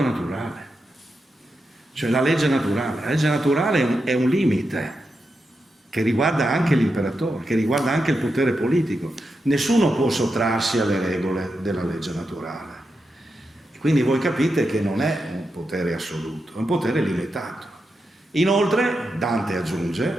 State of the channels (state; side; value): normal; both; correlation 0.87